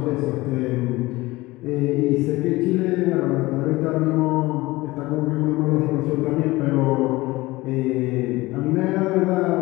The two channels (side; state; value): right; quieter; 20.3 dB